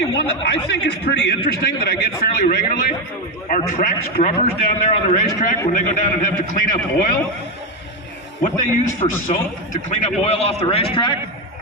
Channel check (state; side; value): normal; both; correlation 0.10